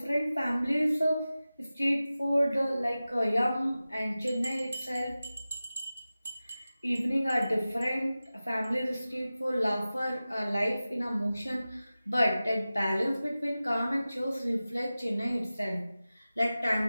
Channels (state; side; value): inverted; both; correlation -0.96